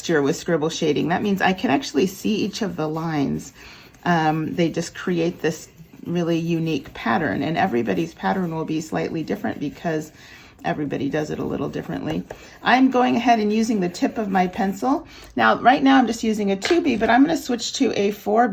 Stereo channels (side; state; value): both; identical; correlation 1.00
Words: with scribble shading. That means I can actually see each of the lines. They just create this really unique pattern, and everybody's pattern will be slightly different because everybody does it a little differently. I'm going ahead and using the tip of my pencil. Now, right now I'm just using a 2B, but I'm going to switch to a